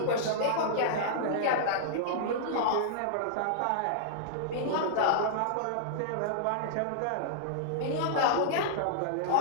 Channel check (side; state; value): both; different; correlation -0.02